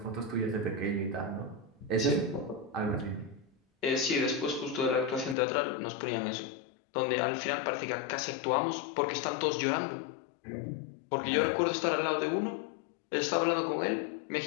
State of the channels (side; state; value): right; drops out; at 5.4 s